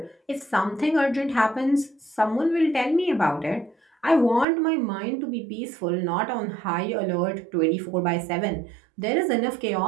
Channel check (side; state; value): left; drops out; at 4.5 s